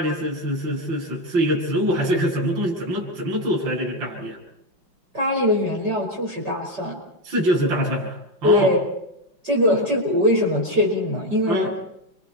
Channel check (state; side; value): late; left; 5.2 ms